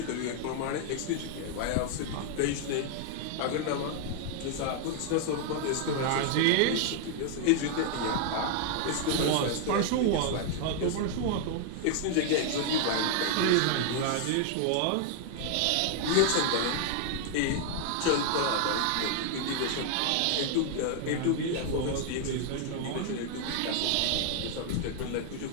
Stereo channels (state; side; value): different; both; correlation 0.00